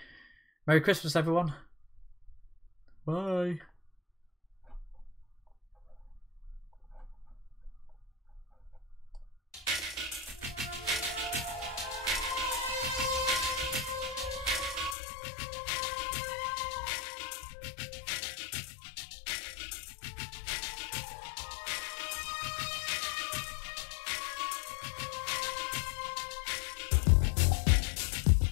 Merry Christmas, everyone. Bye.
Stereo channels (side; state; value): right; drops out; at 15.0 s